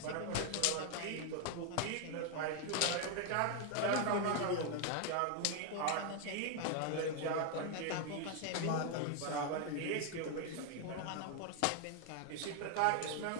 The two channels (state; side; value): different; both; correlation 0.00